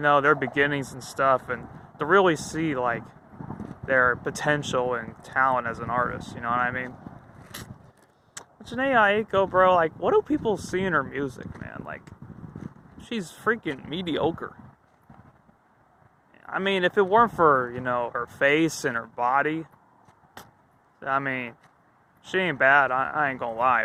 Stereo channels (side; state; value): both; identical; correlation 1.00